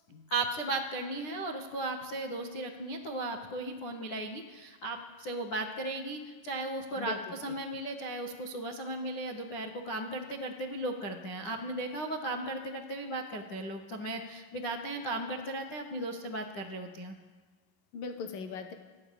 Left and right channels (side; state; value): right; late; 10 ms